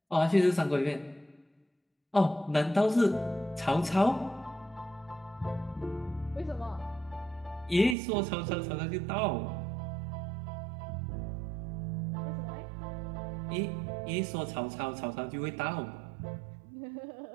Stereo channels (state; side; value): drops out; left; at 8.0 s